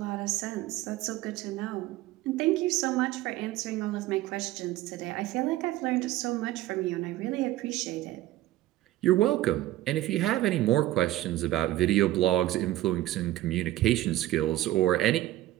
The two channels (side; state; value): left; quieter; 15.3 dB